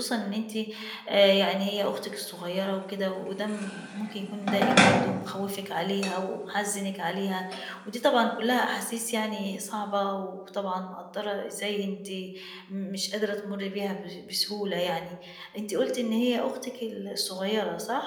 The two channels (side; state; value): both; identical; correlation 1.00